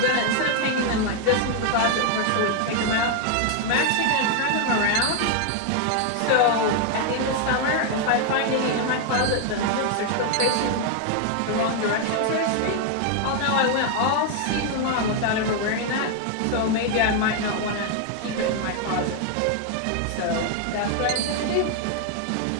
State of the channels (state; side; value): different; both; correlation 0.01